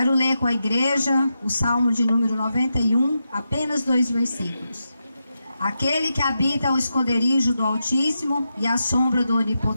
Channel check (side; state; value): both; inverted; correlation -0.87